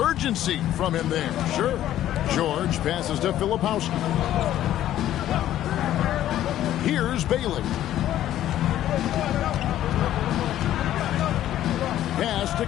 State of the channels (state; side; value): quieter; right; 12.5 dB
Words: from him there. Sure. George passes to Filipowski. Here's Bailey. Pass to